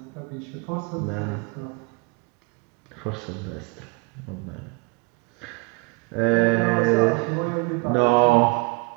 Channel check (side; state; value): left; quieter; 28.7 dB